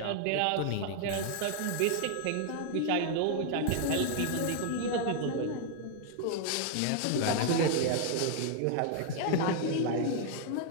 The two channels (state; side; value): different; both; correlation 0.00